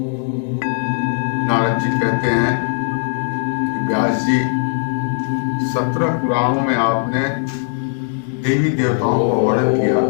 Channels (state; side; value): silent; right; digital silence